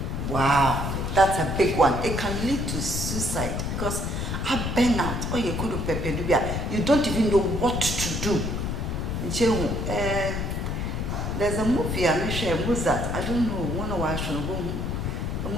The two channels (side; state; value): left; noise; rumble, 2 dB below the sound